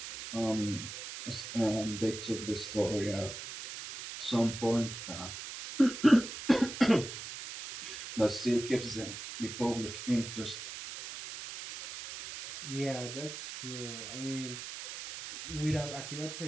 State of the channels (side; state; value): right; noise; hiss, 9 dB below the sound